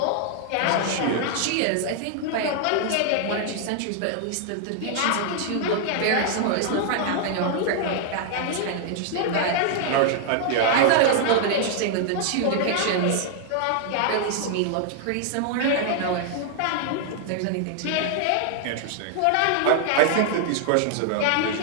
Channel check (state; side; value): different; both; correlation 0.00